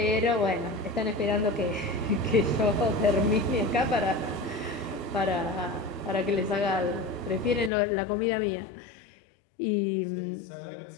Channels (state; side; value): drops out; right; at 7.7 s